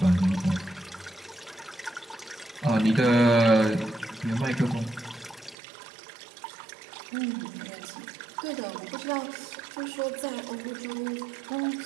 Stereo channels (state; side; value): drops out; left; at 5.6 s